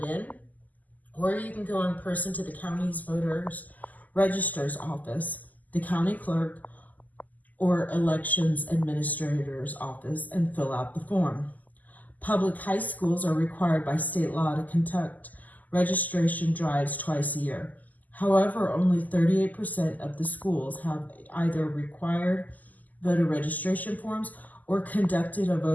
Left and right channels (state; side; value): late; right; 0.081 ms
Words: in, or you can go in person to the county's voters register's office, the county clerk, or elections administrator's office and fill out the form. Public high schools are required by state law to conduct registration drives twice a year. However, only 38% of the schools have either required voter registration forms or conducted a